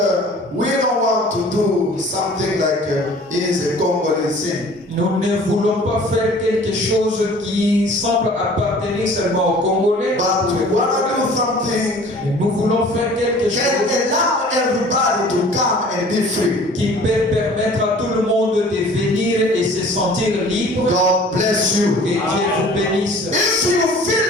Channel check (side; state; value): both; normal; correlation 0.48